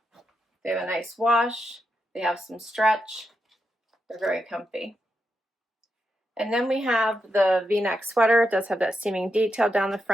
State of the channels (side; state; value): both; normal; correlation 0.85